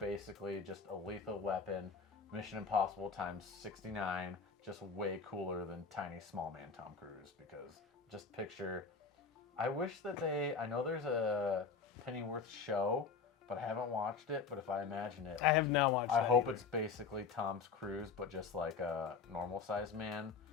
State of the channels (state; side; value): quieter; right; 5.2 dB